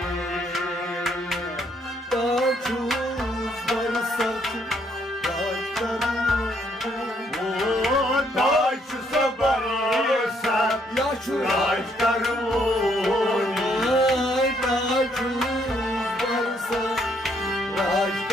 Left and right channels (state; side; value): normal; both; correlation 0.70